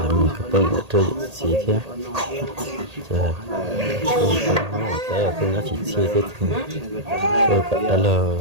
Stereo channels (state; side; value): late; left; 1.8 ms